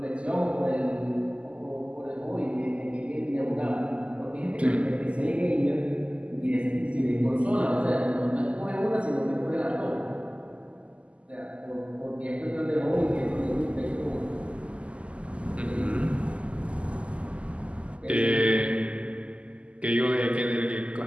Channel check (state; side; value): late; left; 0.058 ms